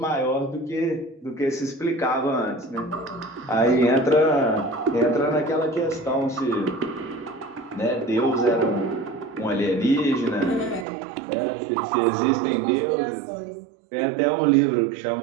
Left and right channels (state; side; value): drops out; left; at 10.9 s